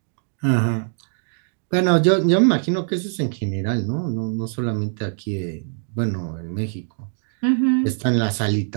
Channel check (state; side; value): silent; left; digital silence